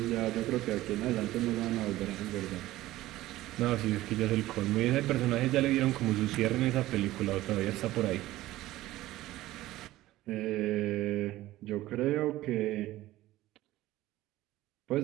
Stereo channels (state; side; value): quieter; left; 16.2 dB